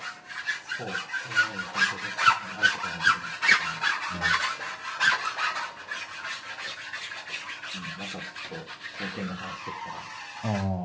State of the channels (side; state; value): both; identical; correlation 1.00